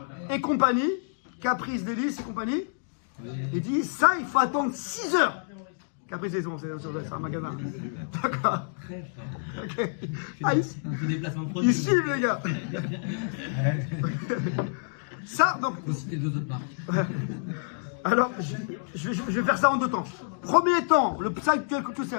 et compagnie, caprice, délice et compagnie, il dit ça il faut attendre 6 heures. Caprice, c'est un magasin. D'accord. Ok. Ah, ici. Ils suivent les gars. Ça, donc. Faut citer 2 autres marques. Alors, je vais faire ça en 2 temps. Premier temps, le psalm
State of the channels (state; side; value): silent; right; digital silence